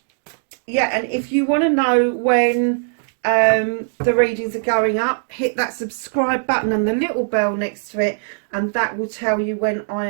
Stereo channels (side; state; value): left; silent; 66 dB below the other